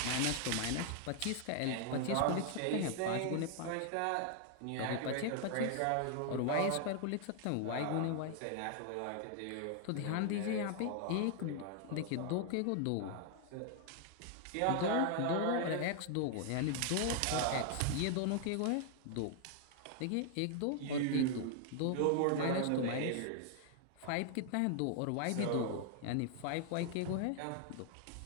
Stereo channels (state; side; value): different; both; correlation 0.00